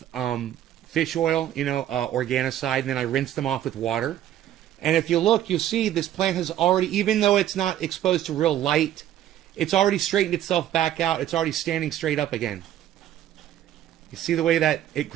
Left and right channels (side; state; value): left; quieter; 11.8 dB